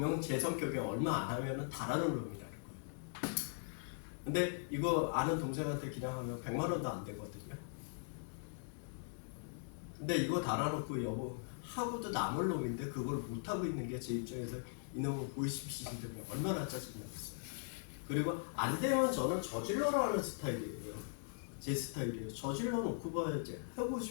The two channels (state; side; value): silent; right; digital silence